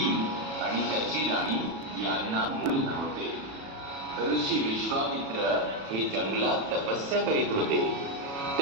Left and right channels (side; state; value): left; late; 36 ms